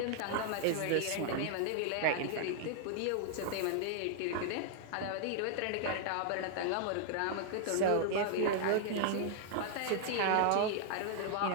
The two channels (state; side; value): different; both; correlation 0.00